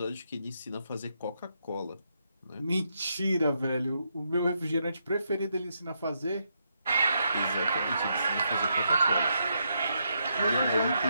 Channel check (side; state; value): both; inverted; correlation -0.80